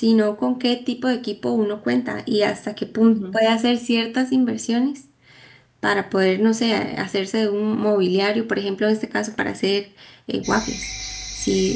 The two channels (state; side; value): identical; both; correlation 1.00